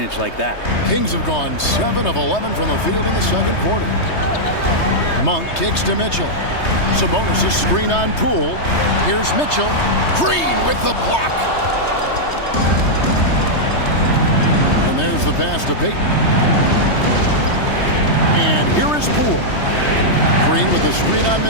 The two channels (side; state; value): right; late; 3.2 ms